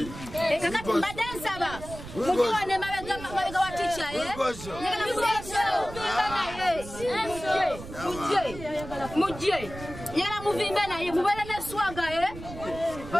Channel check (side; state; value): right; noise; rumble, 12 dB below the sound